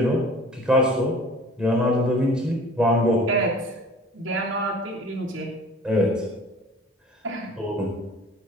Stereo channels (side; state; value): both; normal; correlation 0.46